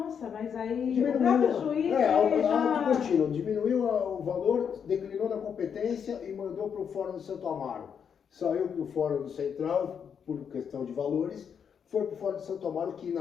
mas aí Diminuiu, o próprio juiz auto contínuo, diminuiu o valor, declinou na competência e mandou para o Fórum do Santo Amaro. Saiu do Fórum do Central por questão de valores, foi para Fora de Santo Amaro, que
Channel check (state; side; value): quieter; right; 7.3 dB